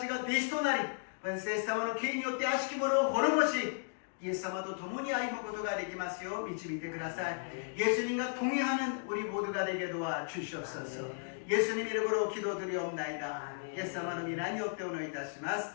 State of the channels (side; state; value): right; silent; digital silence